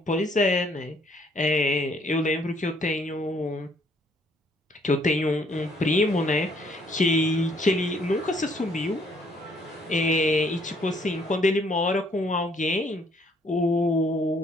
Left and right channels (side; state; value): both; normal; correlation 0.65